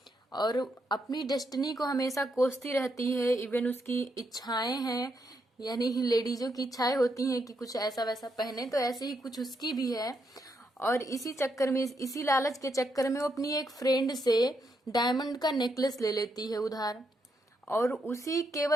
और अपनी डेस्टिनी को हमेशा कोसती रहती है। इवन उसकी इच्छाएं हैं, यानी लेडीजों की इच्छाएं होती हैं कि कुछ ऐसा वैसा पहने, तो ऐसे ही कुछ उसकी भी है। और इसी चक्कर में, इसी लालच के चक्कर में वो अपनी एक फ्रेंड से डायमंड का नेकलेस ले लेती है उधार। और उसी,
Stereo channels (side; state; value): both; normal; correlation 0.79